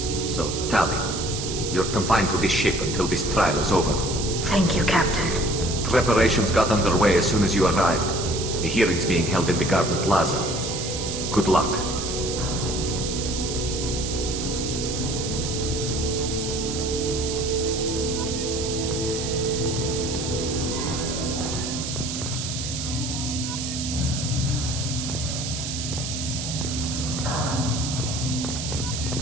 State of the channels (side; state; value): right; noise; hiss, 5 dB below the sound